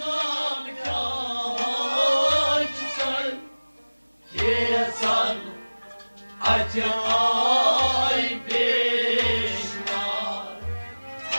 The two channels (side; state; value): both; inverted; correlation -1.00